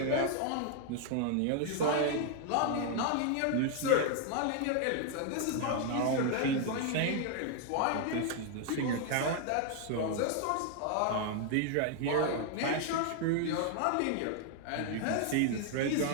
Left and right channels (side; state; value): both; different; correlation 0.00